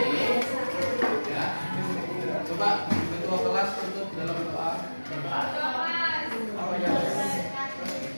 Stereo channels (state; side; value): inverted; both; correlation -1.00